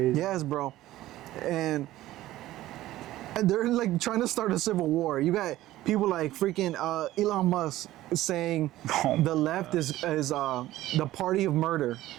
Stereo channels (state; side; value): quieter; left; 15.4 dB